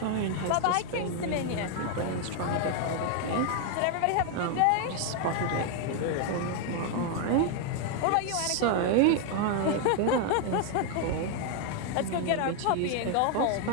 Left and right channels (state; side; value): different; both; correlation 0.01